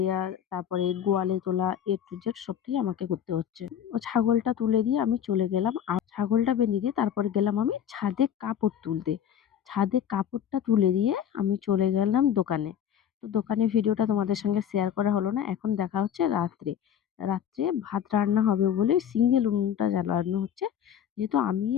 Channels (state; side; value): quieter; right; 9.2 dB